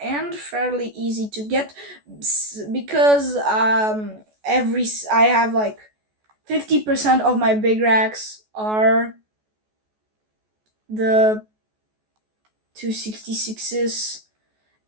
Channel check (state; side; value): late; left; 14 ms